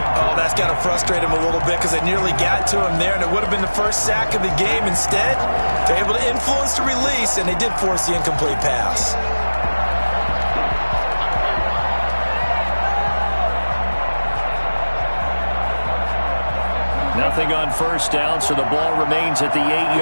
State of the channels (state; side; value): inverted; both; correlation -1.00